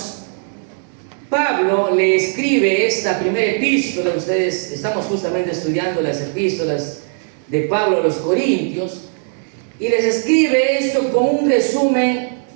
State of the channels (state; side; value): silent; left; 57 dB below the other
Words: Pablo le escribe esta primera epístola. Ustedes estamos justamente estudiando las epístolas de Pablo a los Corintios, y les escribe esto con un resumen